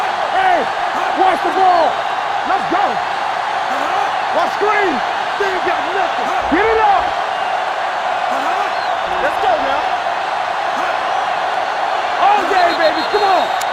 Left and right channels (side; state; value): both; identical; correlation 1.00